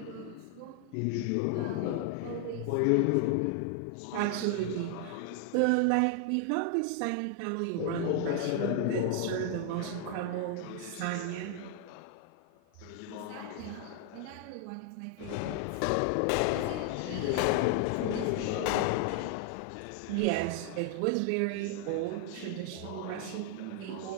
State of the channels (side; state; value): both; different; correlation 0.00